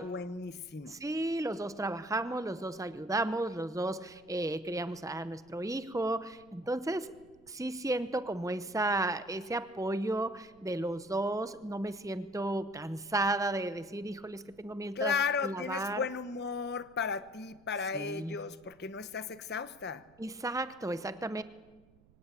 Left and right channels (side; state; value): right; noise; rumble, 29 dB below the sound